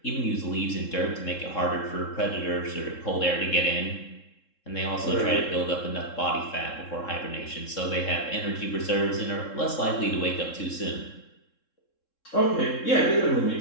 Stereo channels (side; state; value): right; late; 3.7 ms